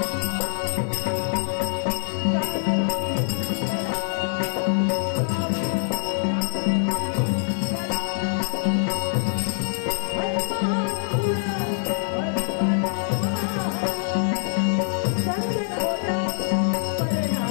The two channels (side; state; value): right; silent; digital silence